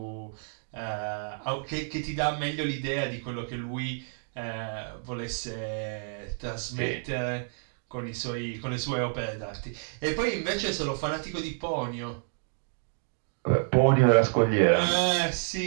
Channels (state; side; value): silent; left; digital silence